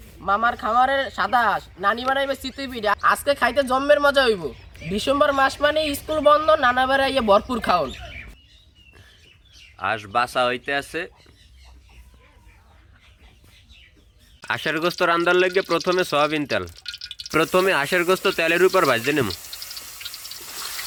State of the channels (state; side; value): identical; both; correlation 1.00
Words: মামার খামারের সাদা হাঁস, নানি বানাইবে চিতুই পিঠা, আজকে খাইতে জম্মের মজা হইব। ডিসেম্বর মাস মানে স্কুল বন্ধ, নানা বেড়াইয়ে ভরপুর খাওন। হাঁস বাসা হইতে আছে। হাঁসের গোস্ত রান্দার লেগে প্রথমে সয়াবিন তেল, প্রথমে হাঁসের গোস্ত তেলের উপর ভাজতে নেব।